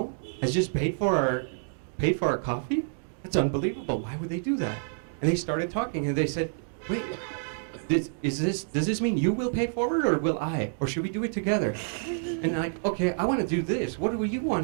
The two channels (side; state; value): left; silent; digital silence